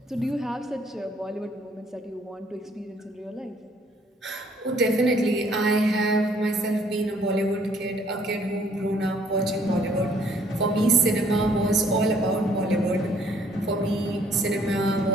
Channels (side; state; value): both; normal; correlation 0.62